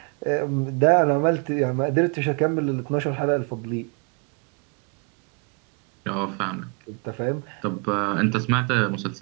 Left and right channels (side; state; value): left; quieter; 36.2 dB